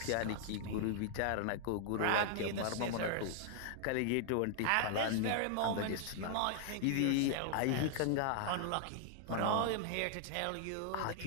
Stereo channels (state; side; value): different; both; correlation 0.00